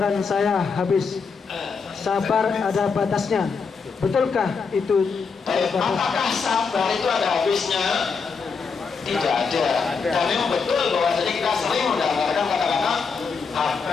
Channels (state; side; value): quieter; right; 5.3 dB